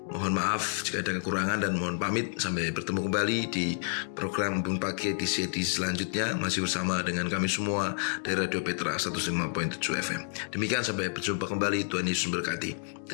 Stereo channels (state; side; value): silent; right; digital silence